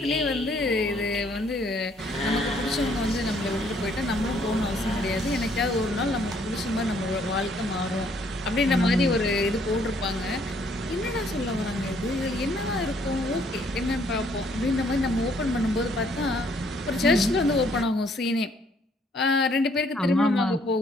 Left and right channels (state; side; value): normal; both; correlation 0.65